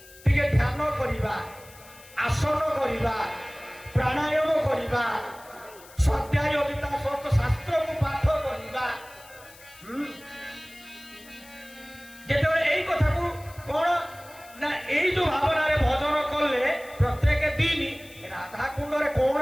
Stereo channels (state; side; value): noise; left; hiss, 22 dB below the sound